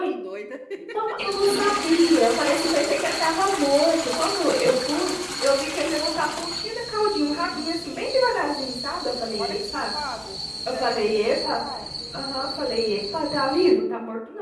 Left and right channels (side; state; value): both; identical; correlation 1.00